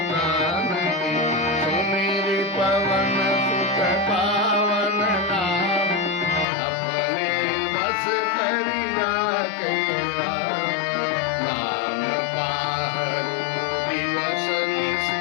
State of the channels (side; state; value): right; drops out; at 6.5 s